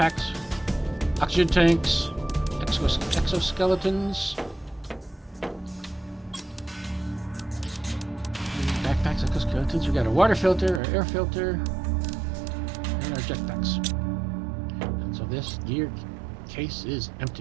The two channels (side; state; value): left; drops out; at 10.8 s